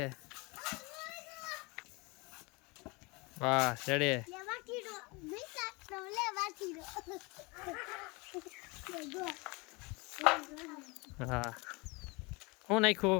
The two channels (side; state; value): right; quieter; 27.1 dB